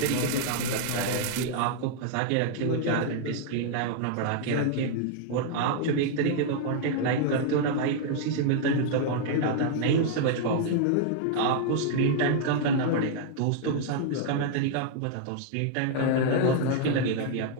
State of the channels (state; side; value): different; both; correlation 0.00